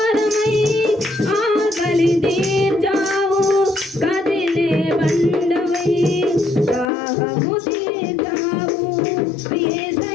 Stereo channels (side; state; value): right; drops out; at 6.9 s